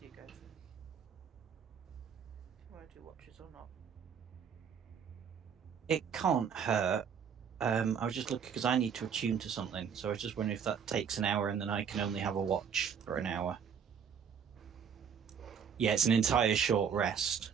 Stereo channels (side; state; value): left; quieter; 7.3 dB